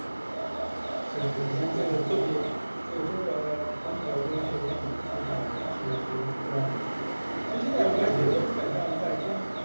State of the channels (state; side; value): inverted; both; correlation -1.00